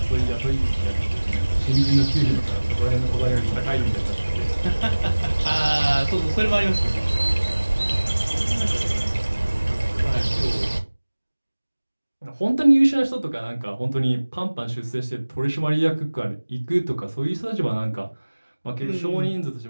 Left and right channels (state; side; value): inverted; both; correlation -1.00